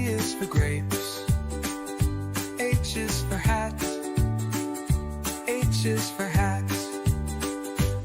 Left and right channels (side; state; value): both; identical; correlation 1.00